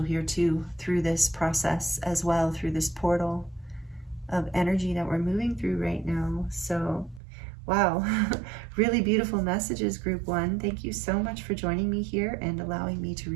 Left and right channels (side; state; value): left; drops out; at 7.2 s